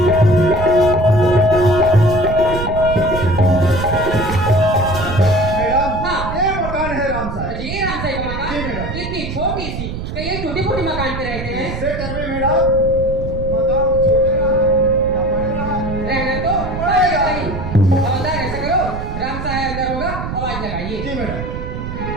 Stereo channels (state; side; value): noise; right; rumble, 6 dB below the sound